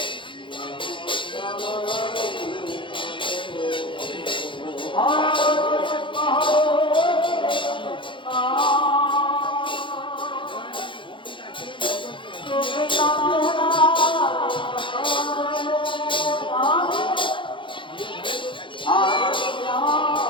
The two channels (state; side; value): late; right; 0.24 ms